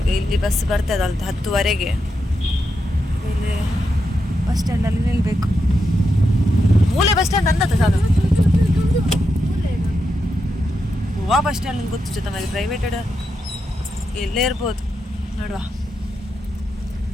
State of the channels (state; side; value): normal; both; correlation 0.85